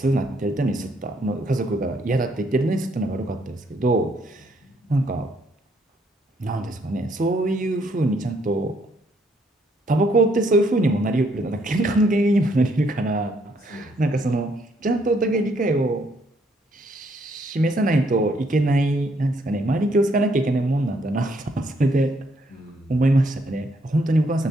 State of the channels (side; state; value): both; normal; correlation 0.70